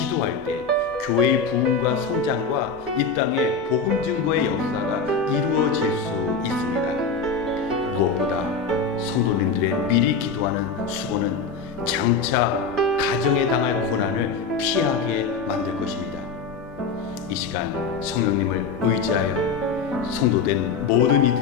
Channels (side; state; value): right; quieter; 4.9 dB